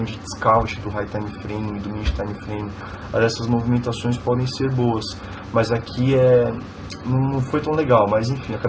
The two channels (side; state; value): both; identical; correlation 1.00